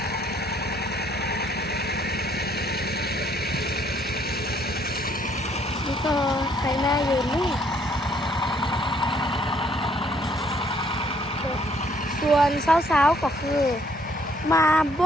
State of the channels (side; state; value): both; normal; correlation 0.65